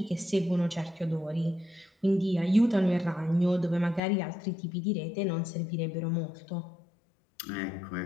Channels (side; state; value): right; drops out; at 4.0 s